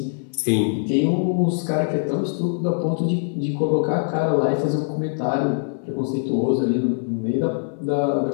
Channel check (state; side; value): silent; right; 59 dB below the other